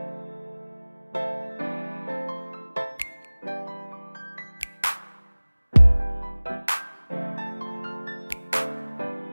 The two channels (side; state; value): both; inverted; correlation -1.00